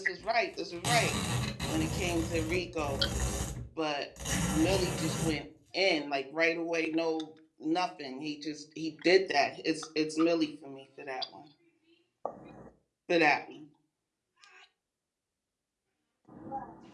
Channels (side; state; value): both; identical; correlation 1.00